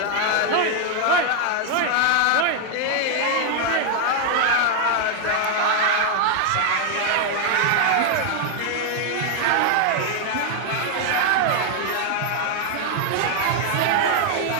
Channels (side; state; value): both; different; correlation 0.00